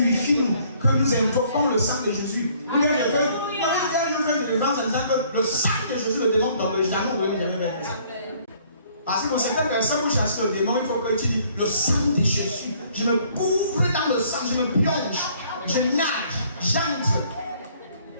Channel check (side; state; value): both; inverted; correlation -0.61